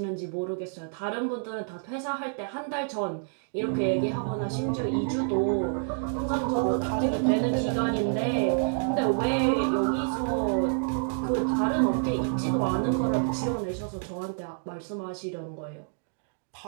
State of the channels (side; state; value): left; silent; digital silence